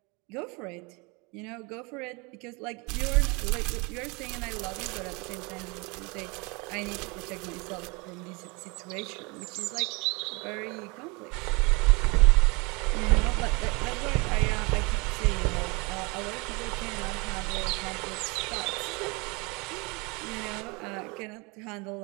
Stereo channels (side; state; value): left; quieter; 28.4 dB